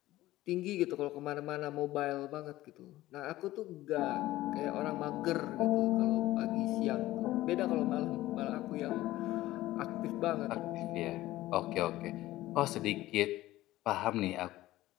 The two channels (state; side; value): quieter; right; 16.2 dB